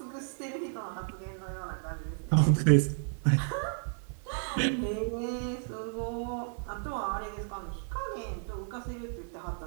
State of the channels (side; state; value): left; silent; 56 dB below the other